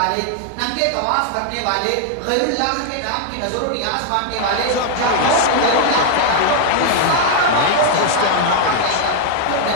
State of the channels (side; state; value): both; different; correlation 0.00